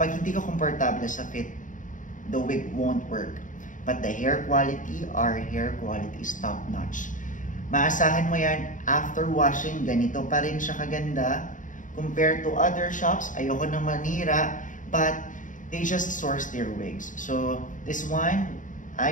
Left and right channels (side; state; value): right; late; 0.37 ms